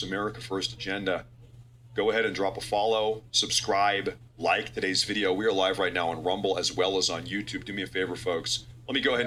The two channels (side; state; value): both; identical; correlation 1.00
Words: America First agenda, go ahead and drop a follow, subscribe, like today's video. We are live right now on Rumble as well as on YouTube. Do me a favor, folks. Let me go ahead